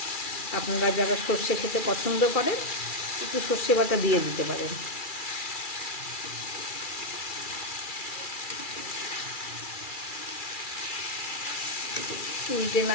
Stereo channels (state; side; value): late; right; 2.4 ms